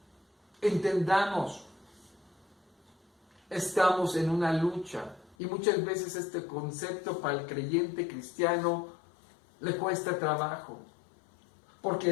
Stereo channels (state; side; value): drops out; right; at 5.4 s